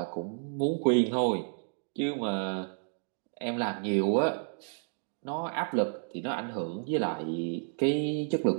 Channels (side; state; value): left; silent; 57 dB below the other